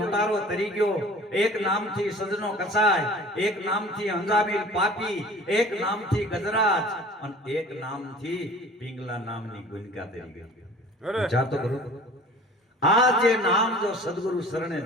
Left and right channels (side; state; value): both; normal; correlation 0.45